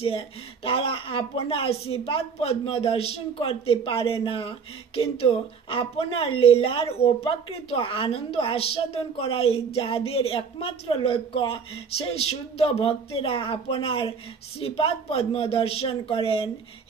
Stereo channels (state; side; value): quieter; left; 5.9 dB